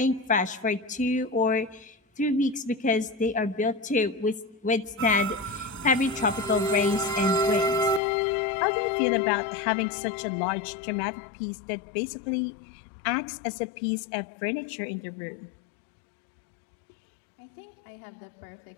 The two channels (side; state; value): right; drops out; at 8.0 s